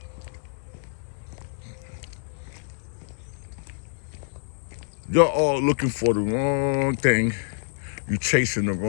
You're all looking for the wrong thing. You chasing the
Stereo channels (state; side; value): silent; right; digital silence